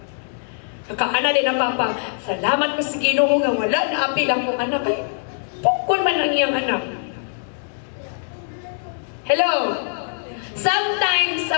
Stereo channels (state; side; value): silent; right; 64 dB below the other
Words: Nakaana din ang papa, salamat ko sa Ginoo nga wala na apil akong anak. Ay, pukul man ang iyang anak. Hello? Sometimes